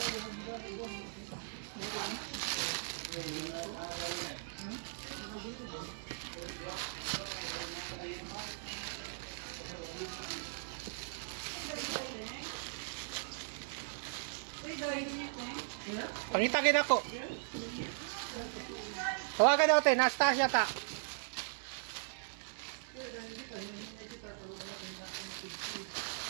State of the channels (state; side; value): silent; left; 52 dB below the other